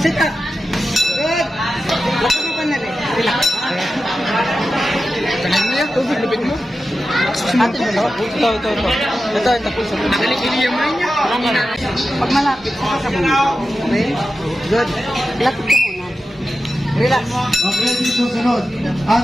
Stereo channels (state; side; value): normal; both; correlation 0.92